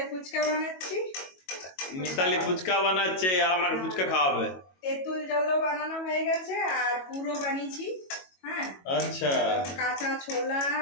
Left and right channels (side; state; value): right; late; 22 ms